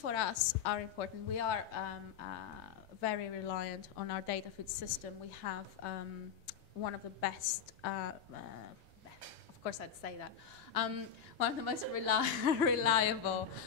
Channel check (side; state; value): right; quieter; 7.9 dB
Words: us are important. We are very reliant on our data feed system. We have one of the best, of course I'd say that, one of the most reliable